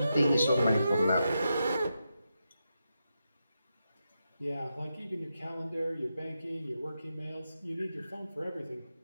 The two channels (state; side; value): inverted; both; correlation -0.87